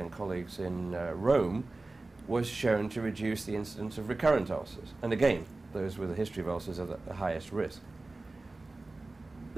colleagues in Rome, was shown to reduce the incidence of recurrent ulcers. And again, those with a history of ulcers are at the highest risk.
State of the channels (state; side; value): quieter; left; 3.2 dB